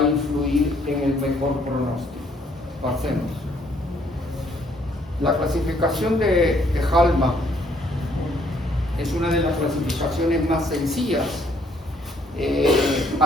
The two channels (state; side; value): normal; both; correlation 0.66